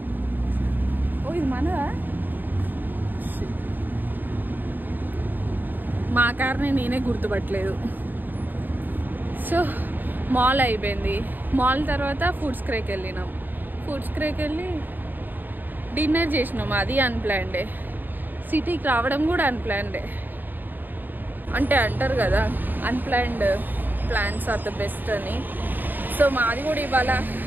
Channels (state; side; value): late; left; 0.090 ms